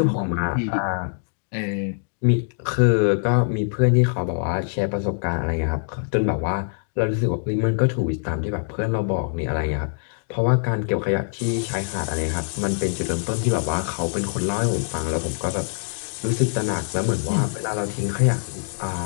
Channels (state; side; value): silent; right; digital silence